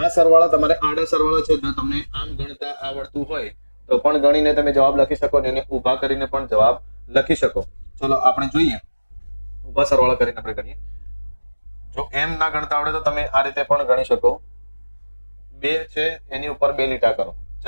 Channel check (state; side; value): inverted; both; correlation -1.00